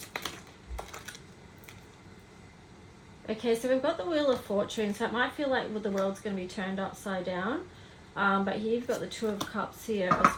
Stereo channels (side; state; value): both; identical; correlation 1.00